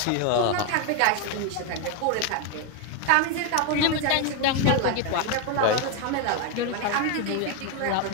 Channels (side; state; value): both; different; correlation 0.01